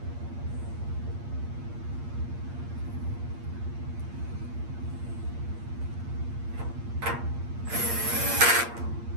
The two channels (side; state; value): left; late; 8.6 ms